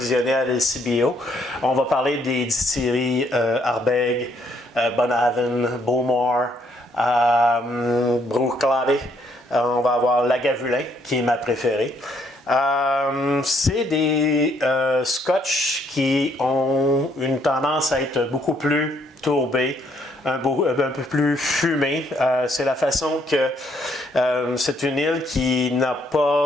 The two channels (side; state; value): both; normal; correlation 0.69